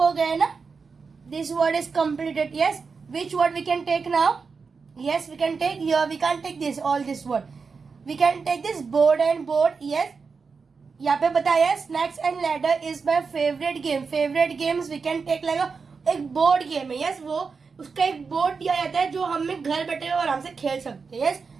हो गए ना. This word is completed. Yes, which word we can take now? Yes, we can take here. We can take this all this word. We can take this board and board. Yes, यहाँ पे बताया snakes and ladder is my favourite game. Favourite games we can take like एक board game है. Yes, वो उसका एक बोर्ड दिया जाता है जो हम घर बैठे हुए आराम से खेल सकते हैं. Yes,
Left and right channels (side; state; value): left; quieter; 5.0 dB